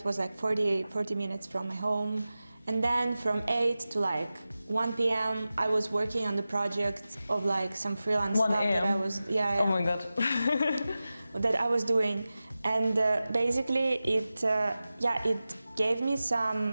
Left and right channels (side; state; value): both; inverted; correlation -0.95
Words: was 40 minutes from my home, and then from 8 to 1 p.m. I was working on the project of like some freelance 1 stuff that I a.m.? was Oh my god. that I was doing, and basically it gave me some